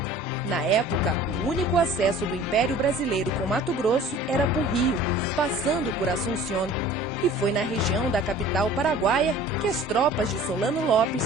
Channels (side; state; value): both; normal; correlation 0.46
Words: Na época, o único acesso do Império Brasileiro com Mato Grosso era por rio, passando por Assunción. E foi na região da capital paraguaia que as tropas de Solano